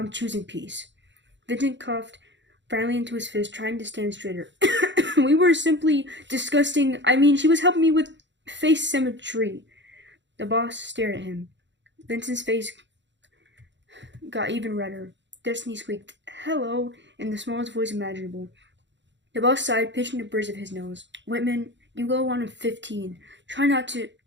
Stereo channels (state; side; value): late; left; 0.53 ms